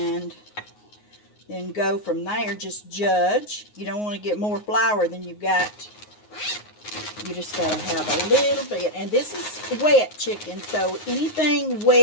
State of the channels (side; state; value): right; late; 9.5 ms